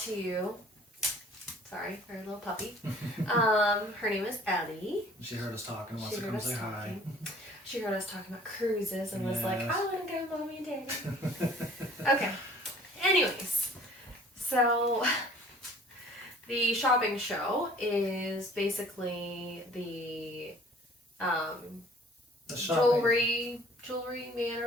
to you. Sorry, our little puppy. Her name is Ellie. She heard us talking and wants to come say hi. She heard us talking about cruises and was like, Yes. I want to go, Mommy and Daddy. Okay. Anyways, so the shopping show is basically the The shopping. jewelry man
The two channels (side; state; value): both; normal; correlation 0.52